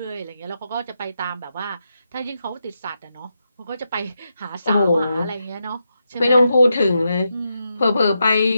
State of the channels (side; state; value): both; inverted; correlation -0.85